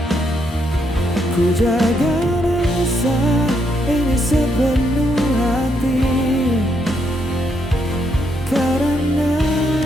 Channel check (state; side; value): normal; both; correlation 0.77